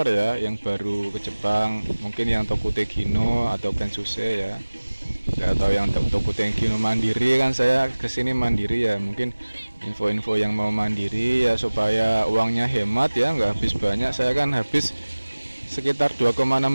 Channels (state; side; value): inverted; both; correlation -1.00